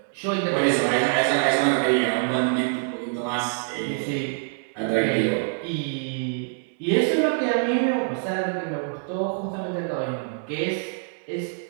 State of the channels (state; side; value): silent; left; 62 dB below the other